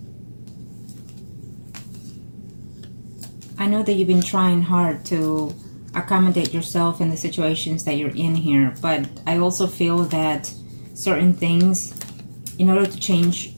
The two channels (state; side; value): inverted; both; correlation -1.00